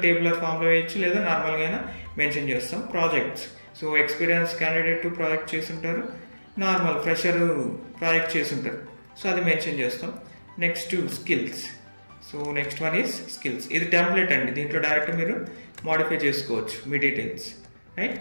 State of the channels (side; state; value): both; inverted; correlation -1.00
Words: టేబులర్ ఫామ్లో వేయచ్చు, లేదా నార్మల్గా అయినా మెన్షన్ చేస్తాం. Projects, so experience candidate project చేస్తుంటారు, నార్మల్ ఫ్రెషర్ ప్రాజెక్ట్ చేస్తుంటారు, సో అది మెన్షన్ చేస్తాం. Next skills. So next one is skills. ఇది టెంప్లెట్ అండి, దీంట్లో డైరెక్ట్ మీరు మాడిఫై చేసుకోవచ్చు మీ డీటెయిల్స్,